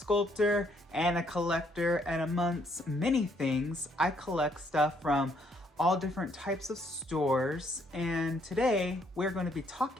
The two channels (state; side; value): normal; both; correlation 0.69